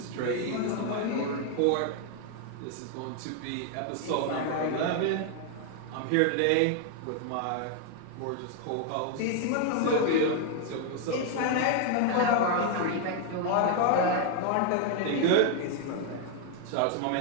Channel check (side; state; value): both; different; correlation 0.00